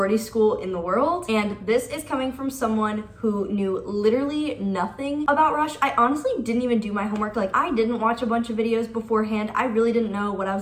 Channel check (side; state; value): both; identical; correlation 1.00